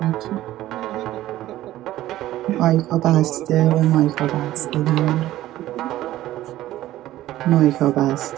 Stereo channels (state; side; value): quieter; left; 14.7 dB